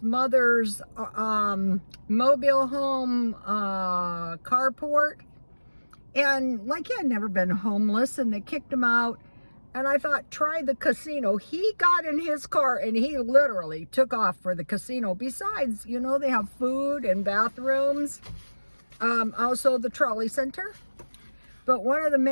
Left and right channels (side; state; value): both; inverted; correlation -1.00